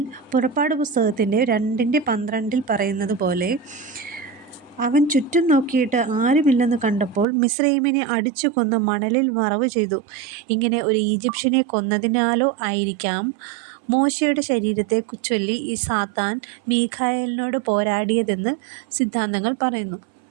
പുറപ്പാട് പുസ്തകത്തിൻ്റെ 2-12 പറയുന്നത് പോലെ: അവൻ ചുറ്റും നോക്കിയിട്ട് ആരുമില്ലെന്ന് കണ്ടപ്പോൾ മിസ്രയീമിനെ അടിച്ചു കൊന്ന് മണലിൽ മറവ് ചെയ്തു. ഇങ്ങനെ ഒരു ഈജിപ്ഷ്യനെ കൊന്നതിനാലോ ആയിരിക്കാം മോശയുടെ ശരീരത്തെ ചൊല്ലി ഈ സാത്താൻ മീഖായേലിനോട് പോരാടിയതെന്ന് സിദ്ധാന്തങ്ങൾ പറയുന്നു.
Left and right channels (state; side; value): drops out; left; at 7.2 s